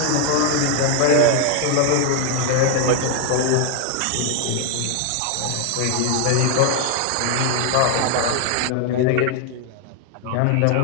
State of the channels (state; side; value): different; both; correlation 0.00